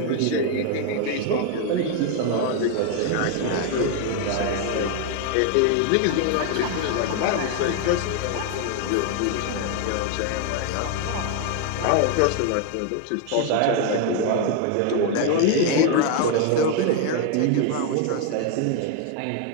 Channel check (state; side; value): different; both; correlation 0.01